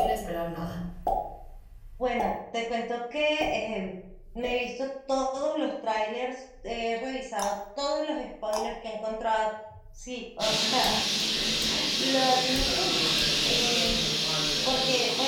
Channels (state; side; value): identical; both; correlation 1.00